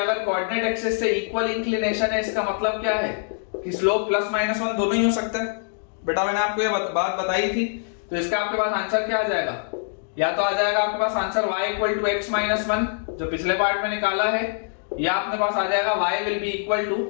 कोऑर्डिनेट एक्सिस से इक्वल इंक्लिनेशन है, इसका मतलब क्या है कि स्लोप +-1 दोनों ही हो सकता है। बेटा मैंने आपको ये बात बताई थी। तो इसका आपके पास आंसर क्या आ जाएगा? या तो आ जाएगा आपके पास answer y equal to x minus 1 जो पिछले पार्ट में निकाला है, या अपने पास आ जाएगा y will be equal to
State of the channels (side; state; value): right; silent; digital silence